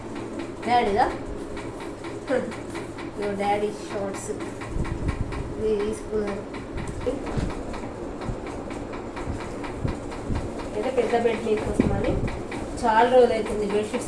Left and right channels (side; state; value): both; identical; correlation 1.00